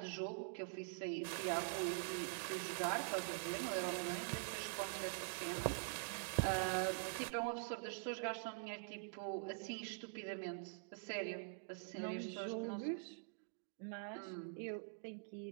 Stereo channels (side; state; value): left; silent; digital silence